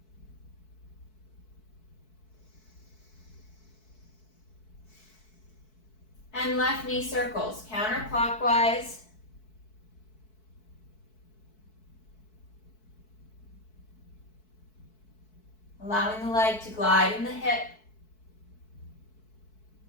And left knee circles, counterclockwise. Allowing the leg to glide in the hip.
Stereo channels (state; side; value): late; right; 4.6 ms